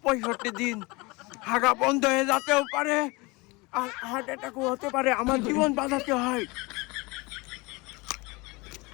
দিন হাগা বন্ধ হয়ে যেতেও পারে, আর হার্ট অ্যাটাকও হতে পারে। আমার জীবন বাঁচাতে হয়।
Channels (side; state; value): right; quieter; 25.1 dB